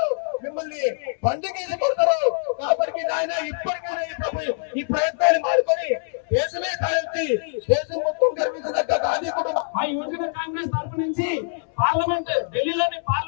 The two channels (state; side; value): silent; right; 62 dB below the other